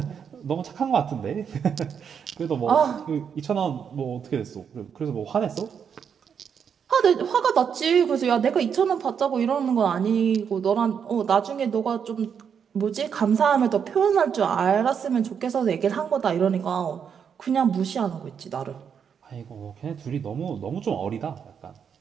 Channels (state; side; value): quieter; left; 7.3 dB